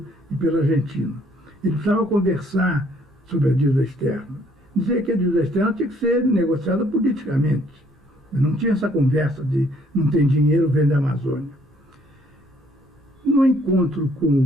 e pela Argentina. Ele precisava conversar sobre a dívida externa. Dizer que a dívida externa tinha que ser negociada politicamente. Não tinha essa conversa de não tem dinheiro, vende a Amazônia. No encontro com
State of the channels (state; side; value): normal; both; correlation 0.64